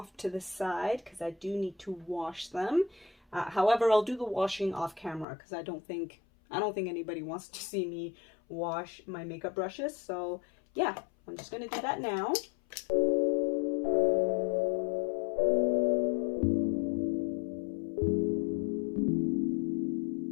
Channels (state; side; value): drops out; right; at 5.2 s